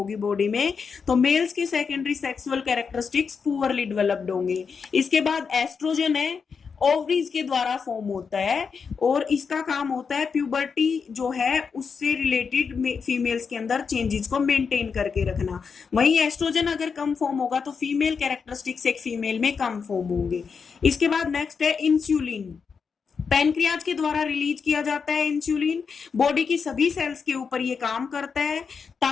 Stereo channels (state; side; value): quieter; right; 5.8 dB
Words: बॉडी में तो मेल्स के secondary sexual characteristics poorly developed होंगे। इसके बाद एस्ट्रोजन है, ओवरीज के द्वारा फॉर्म होता है, और इसका काम होता है प्यूबर्टी जो है उससे रिलेटेड फीमेल्स के अंदर चेंजेस को मेंटेन करके रखना। वहीं एस्ट्रोजन अगर कम फॉर्म होगा तो फीमेल कैरेक्टरिस्टिक्स एक फीमेल में कम फॉर्म होंगे। इसके बाद नेक्स्ट है इंसुलिन। पैनक्रियाज के द्वारा रिलीज किया जाता है इंसुलिन। बॉडी की सभी सेल्स के ऊपर ये काम करता है